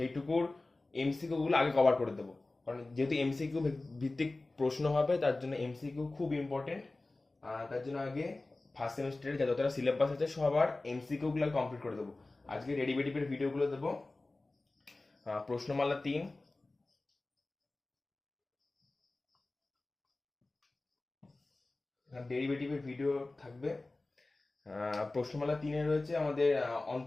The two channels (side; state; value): right; quieter; 3.1 dB